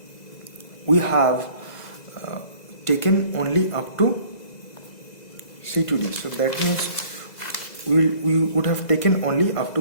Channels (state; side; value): late; right; 2.0 ms